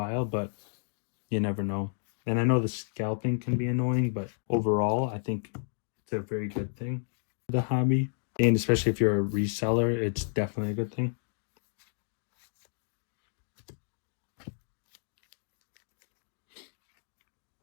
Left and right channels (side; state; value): right; silent; digital silence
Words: but you never know. And I know the scalping can be annoying, but overall, I think it's a very good thing for the hobby. And especially if you're a reseller, it's definitely a good thing.